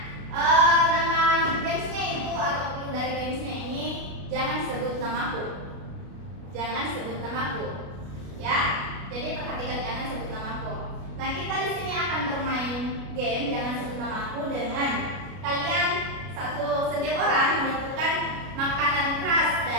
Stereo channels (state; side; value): late; left; 32 ms